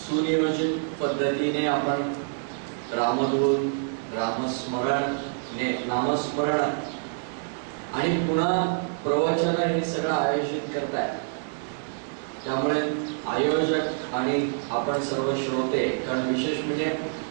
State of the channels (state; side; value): silent; left; digital silence